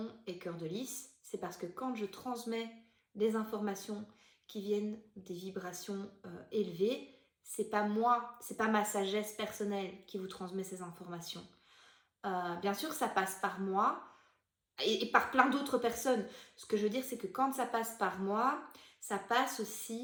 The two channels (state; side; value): identical; both; correlation 1.00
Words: est Cœur de Lys. C'est parce que quand je transmets des informations qui viennent des vibrations élevées, c'est pas moi, c'est pas ma sagesse personnelle qui vous transmet ces informations. Bien sûr, ça passe par moi, et par plein d'autres personnes. Ce que je veux dire, c'est que quand ça passe par moi, ça passe